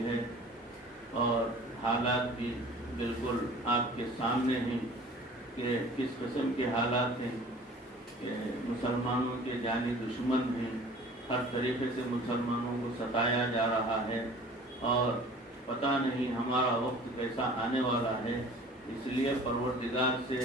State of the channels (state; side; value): normal; both; correlation 0.46